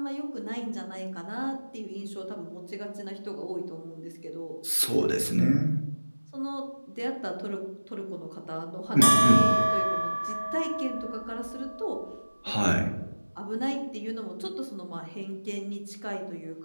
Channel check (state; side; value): inverted; both; correlation -1.00